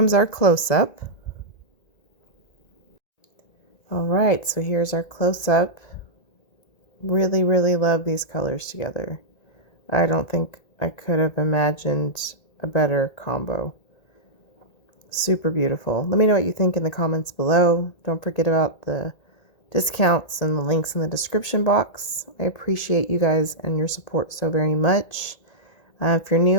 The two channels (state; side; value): late; right; 1.9 ms